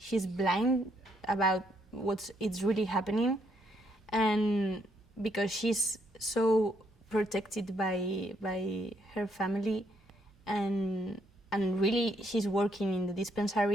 blind about it's really happening, and because she's so protected by her family, and really she's working in the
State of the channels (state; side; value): normal; both; correlation 0.72